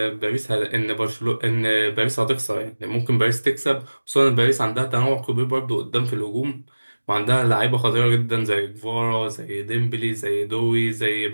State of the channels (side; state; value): both; inverted; correlation -1.00